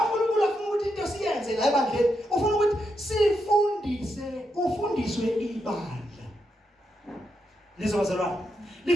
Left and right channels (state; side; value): normal; both; correlation 0.83